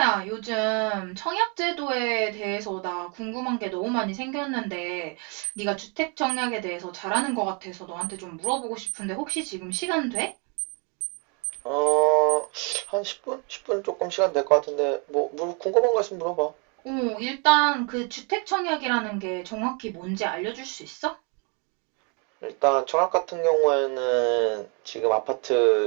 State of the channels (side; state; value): left; quieter; 35.2 dB